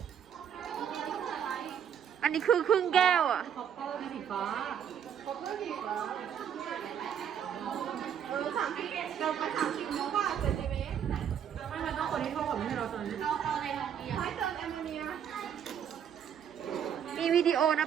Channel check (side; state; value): left; quieter; 8.7 dB